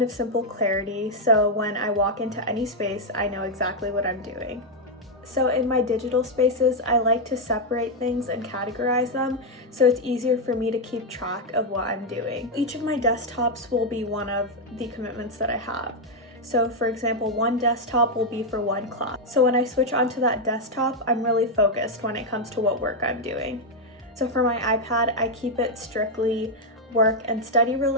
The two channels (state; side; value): normal; both; correlation 0.01